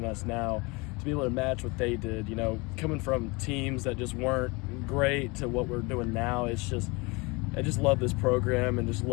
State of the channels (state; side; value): quieter; right; 26.5 dB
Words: us now, to be able to match what they did. Coming from teams that just weren't great to what we're doing now, I just love this program and just